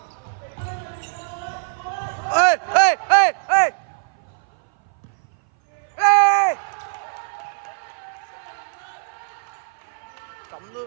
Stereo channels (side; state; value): left; silent; 58 dB below the other